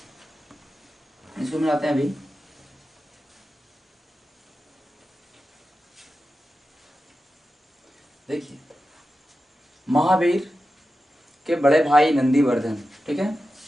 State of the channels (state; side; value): normal; both; correlation 0.92